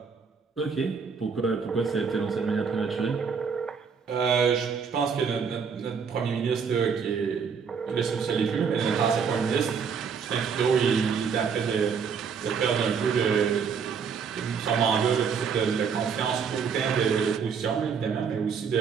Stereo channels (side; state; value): left; quieter; 6.2 dB